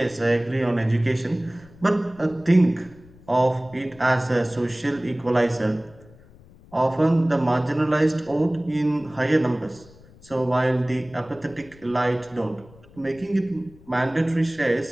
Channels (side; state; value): left; noise; rumble, 24 dB below the sound